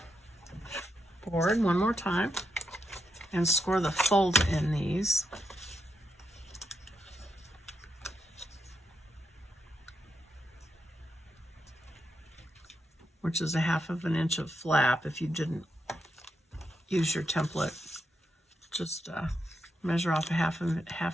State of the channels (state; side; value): normal; both; correlation 0.82